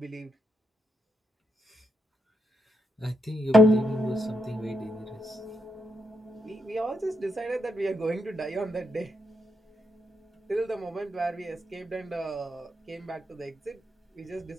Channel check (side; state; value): both; normal; correlation 0.81